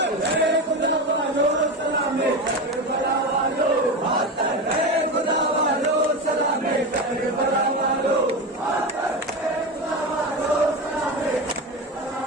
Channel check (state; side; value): normal; both; correlation 0.21